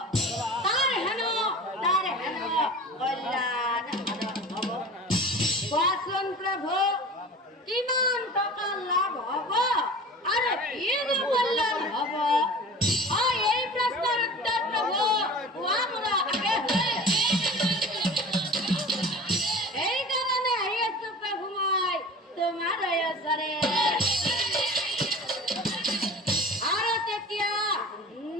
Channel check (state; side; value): normal; both; correlation 0.38